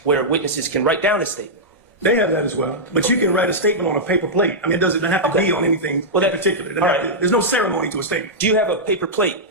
Where witnesses can write down a statement. They have that as well. But you can write a statement on a paper plate. I mean, it doesn't have to be on anything in particular. It doesn't have to- There's no ceremony to a statement. Do you have a paper plate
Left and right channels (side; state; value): both; normal; correlation -0.09